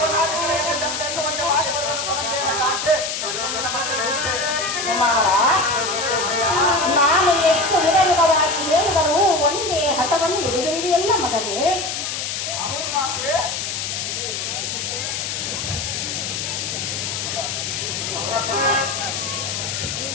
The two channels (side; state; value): left; noise; hiss, 3 dB below the sound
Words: ಮಾಡಿ ಕುಮಾರ ನಾನು ಎಷ್ಟು ವಿಧವಿಧವಾಗಿ ಹೇಳಿದರೂ ಒಂದೇ ಹಠವನ್ನು ಹಿಡಿದಿರುವೆಯಲ್ಲ ಮಗನೇ. ಅವರು ಮಾತ್ರ